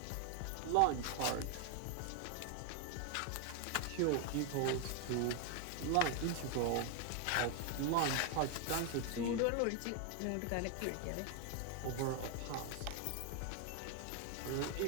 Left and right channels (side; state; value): both; different; correlation 0.01